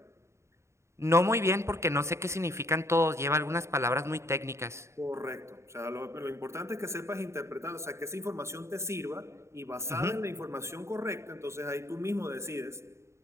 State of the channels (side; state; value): left; late; 0.14 ms